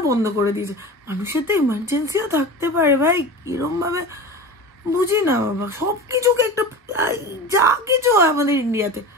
বন্ধ করে দিয়েছে। মানুষের তো ইমার্জেন্সিও থাকতে পারে ভাই, কিরম ভাবে বুঝি না বাবা। সবকিছুকে একটা যা কিছু হয় আমাদের ইন্ডিয়াতে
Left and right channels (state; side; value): normal; both; correlation 0.31